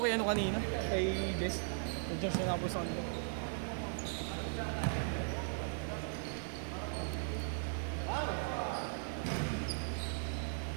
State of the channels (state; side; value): silent; left; digital silence